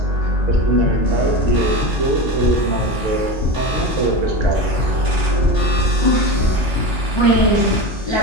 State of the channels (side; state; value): both; normal; correlation 0.24